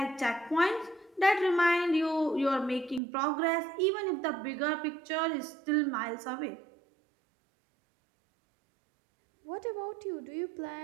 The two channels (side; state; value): left; drops out; at 3.0 s